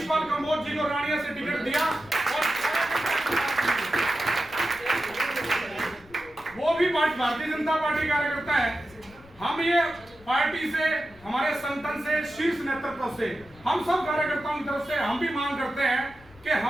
कंबोज जी को रानिया से टिकट दिया और वो भी भारतीय जनता पार्टी कार्यकर्ता है। हम ये पार्टी से, हमारे संगठन से, शीर्ष नेतृत्व से, हम सब कार्यकर्ताओं की तरफ से हम भी मांग करते हैं कि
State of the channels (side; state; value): left; noise; rumble, 24 dB below the sound